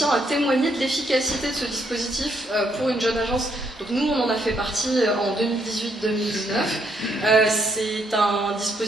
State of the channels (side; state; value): both; normal; correlation 0.73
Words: à témoigner de l'efficacité de ce dispositif pour une jeune agence. Donc nous, on en a fait partie en 2018-2019. C'est un